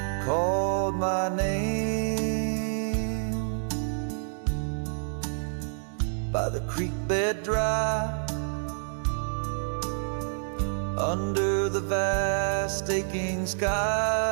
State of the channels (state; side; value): silent; left; 59 dB below the other